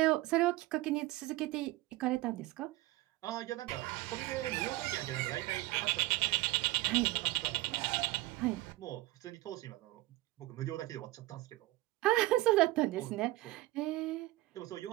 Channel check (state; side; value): quieter; left; 18.5 dB